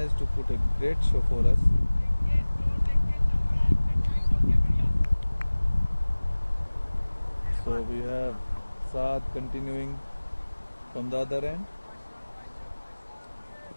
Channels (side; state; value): both; inverted; correlation -1.00